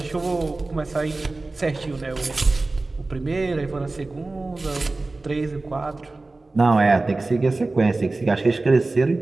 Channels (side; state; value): left; quieter; 3.3 dB